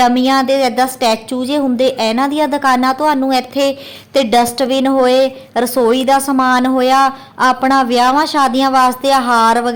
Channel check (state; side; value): identical; both; correlation 1.00